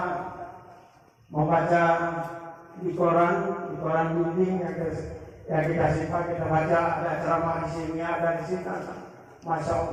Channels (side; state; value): both; identical; correlation 1.00